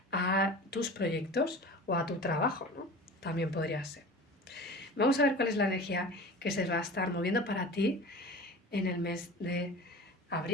a tus proyectos o a tu trabajo, ¿no? También podría ser. Vamos a ver cuál es la energía que se va a estar moviendo para ti en el mes de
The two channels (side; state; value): both; normal; correlation 0.36